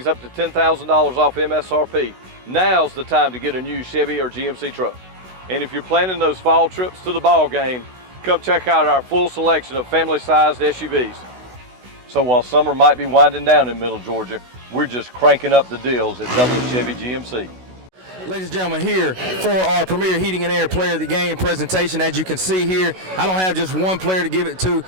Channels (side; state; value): left; late; 16 ms